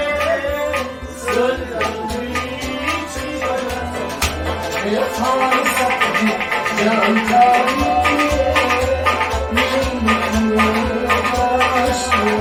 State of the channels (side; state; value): both; identical; correlation 1.00